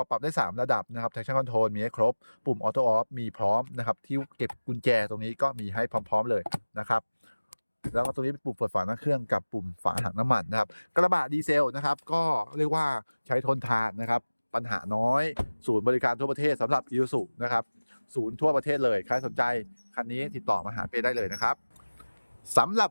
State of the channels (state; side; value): inverted; both; correlation -1.00